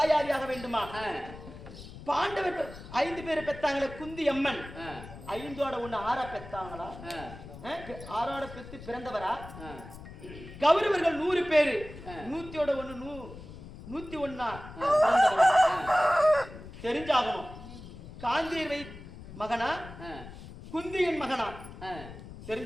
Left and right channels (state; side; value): noise; left; rumble, 14 dB below the sound